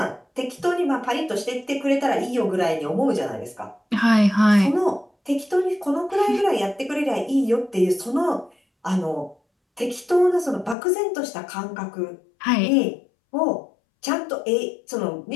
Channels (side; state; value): right; drops out; at 10.8 s